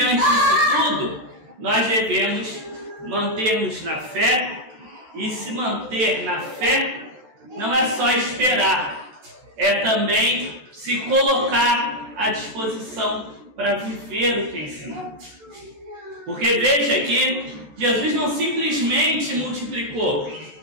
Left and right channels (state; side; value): late; left; 14 ms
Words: disso tudo, nós devemos manter-nos na fé, e se manter na fé não é só esperar, é também se colocar à disposição para viver o que ensinou. Porque veja que Jesus não simplesmente multiplicou.